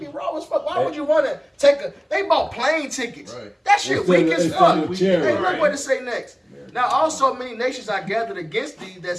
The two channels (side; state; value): both; identical; correlation 1.00